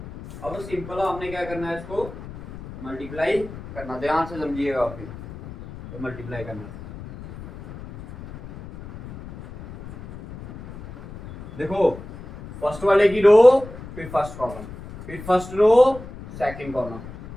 अब सिंपल आपने क्या करना है, इसको मल्टीप्लाई करना, ध्यान से समझिएगा। फिर तो मल्टीप्लाई करना, देखो फर्स्ट वाले की रो, फिर फर्स्ट कॉलम, फिर first row second column,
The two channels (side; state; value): left; noise; rumble, 14 dB below the sound